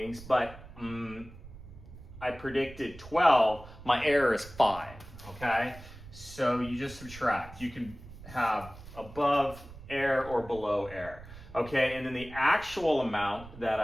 but I predicted 12, my error is 5, okay? So you just subtract. You can have above error or below error, okay? And then the actual amount that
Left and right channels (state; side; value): noise; right; rumble, 17 dB below the sound